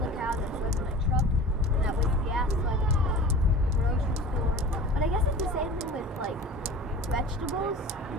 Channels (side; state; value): both; normal; correlation 0.38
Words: cow, and then throw it in a truck, and that wastes gas the grocery store. But I guess it's the same thing with vegetables,